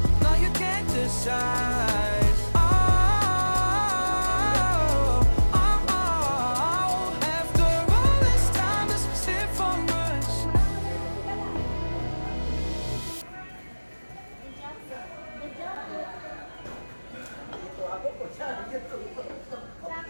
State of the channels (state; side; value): inverted; both; correlation -1.00